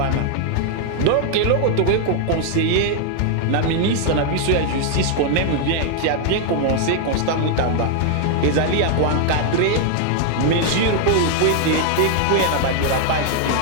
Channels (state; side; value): different; both; correlation 0.00